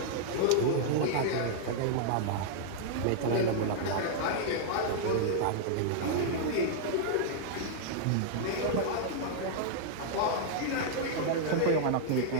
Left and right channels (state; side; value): different; both; correlation -0.01